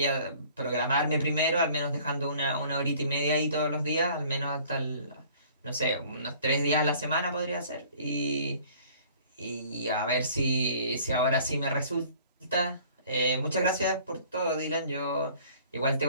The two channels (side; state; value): both; inverted; correlation -0.53